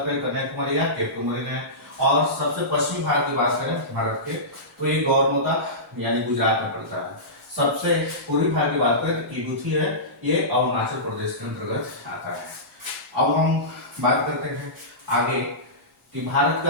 करें कन्याकुमारी या केप केमोरे है, और सबसे पश्चिमी भाग की बात करें भारत के तो ये गौरमोता यानी गुजरात में पड़ता है। सबसे पूर्वी भाग की बात करें तो किबूथी है, ये अरुणाचल प्रदेश के अंतर्गत आता है। अब हम बात करते हैं आगे कि भारत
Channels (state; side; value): normal; both; correlation -0.19